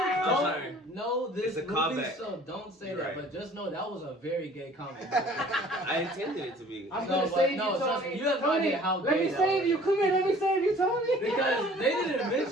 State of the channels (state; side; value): normal; both; correlation 0.51